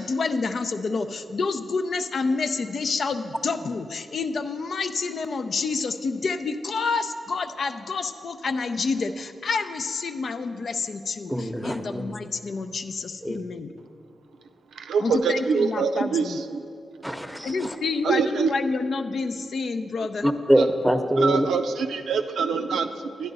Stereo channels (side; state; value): both; normal; correlation 0.83